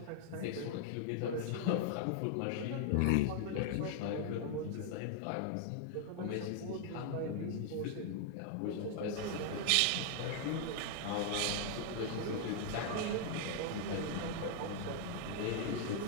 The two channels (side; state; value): both; different; correlation 0.00